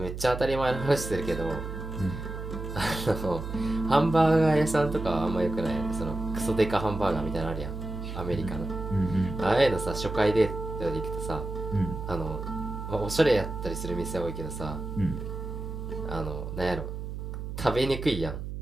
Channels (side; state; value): right; noise; hum, 7 dB below the sound